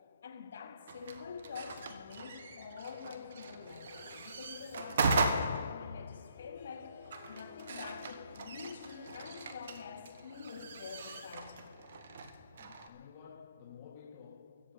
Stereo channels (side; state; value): both; inverted; correlation -0.70